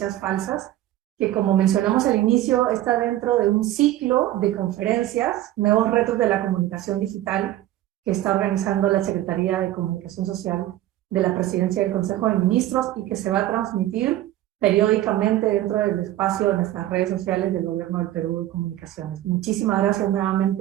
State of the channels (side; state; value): left; quieter; 14.2 dB